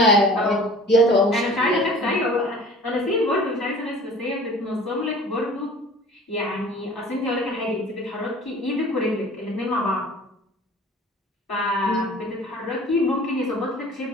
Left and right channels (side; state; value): both; normal; correlation 0.45